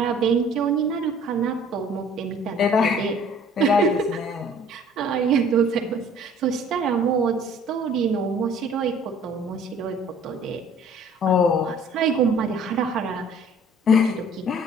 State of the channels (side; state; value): both; normal; correlation 0.53